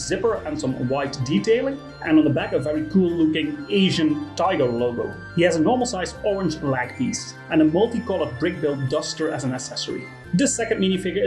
and some white detailing, and on the back a very cool looking Asian tiger logo. He has a normal sized orange leg piece and a multicolored BrickBeard duster as an accessory. The second minifigure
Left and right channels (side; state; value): both; identical; correlation 1.00